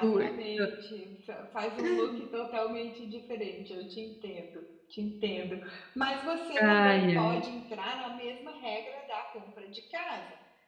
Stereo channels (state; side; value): identical; both; correlation 1.00